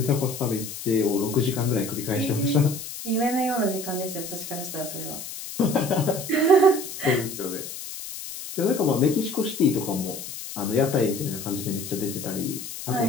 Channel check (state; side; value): noise; left; hiss, 9 dB below the sound